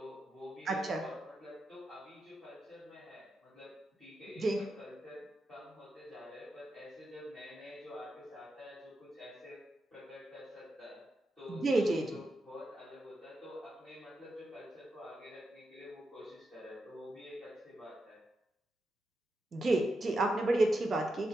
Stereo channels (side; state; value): both; normal; correlation 0.87